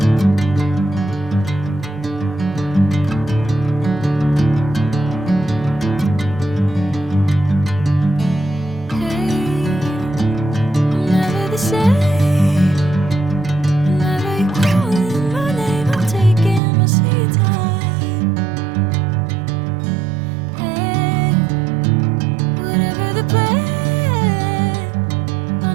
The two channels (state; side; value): drops out; left; at 16.6 s